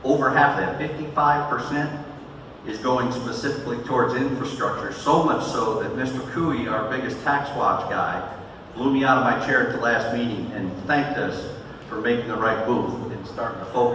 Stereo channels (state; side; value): identical; both; correlation 1.00